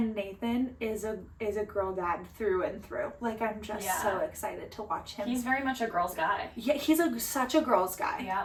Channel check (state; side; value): identical; both; correlation 1.00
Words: Nathan is a girl dad through and through. Like, I'm just so excited to watch him. He's very much a girl's guy. Yeah, he's such a girl's guy.